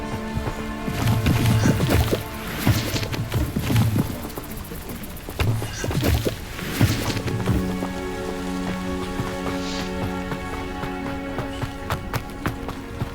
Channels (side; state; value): both; identical; correlation 1.00